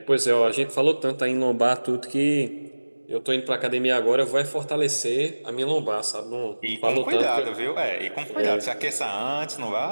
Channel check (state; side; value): inverted; both; correlation -1.00